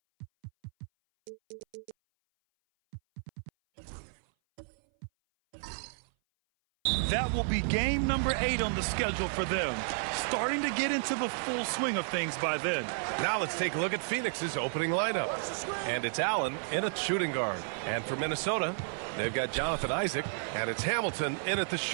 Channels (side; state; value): left; silent; 56 dB below the other